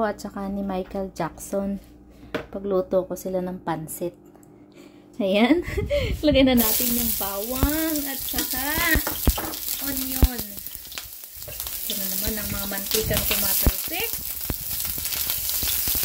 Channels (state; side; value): identical; both; correlation 1.00